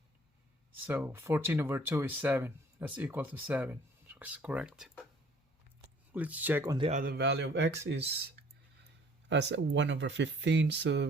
So 14 over 2 is 7. That's equal to 7. It's correct. Let's check on the other value of x is as 1 over 15. So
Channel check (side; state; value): both; normal; correlation 0.55